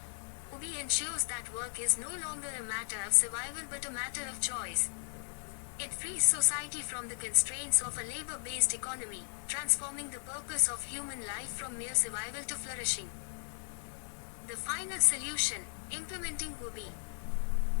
UBI ensures that work is no longer a matter of survival but a matter of choice. It frees society from the constraints of a labor-based economy, transforming the purpose of human life from mere survival to flourishing. The final solution, implementing UBI.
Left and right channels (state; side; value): silent; right; digital silence